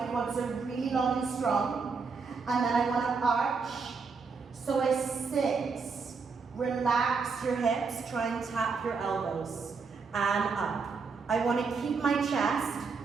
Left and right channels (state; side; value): quieter; left; 4.9 dB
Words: quads are really long and strong. And then I want to arch. So I sit, relax your hips, try and tap your elbows, and up. I want to keep my chest